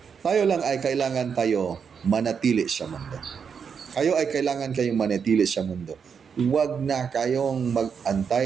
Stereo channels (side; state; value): left; quieter; 6.6 dB